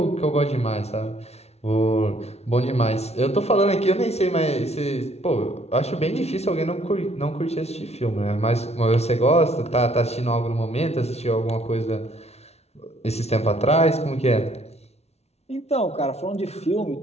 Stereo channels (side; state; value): right; late; 0.31 ms